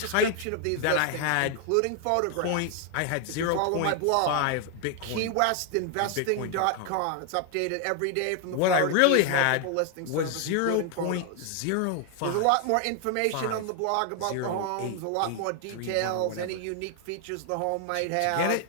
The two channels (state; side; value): different; both; correlation 0.00